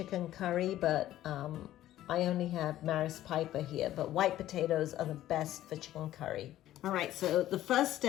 curry, but I only have Maris Piper here, but white potatoes are the best for chicken curry. All right, so the first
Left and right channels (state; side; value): quieter; right; 13.6 dB